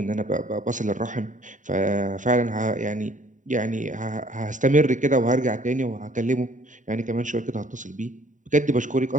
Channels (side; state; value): left; late; 0.36 ms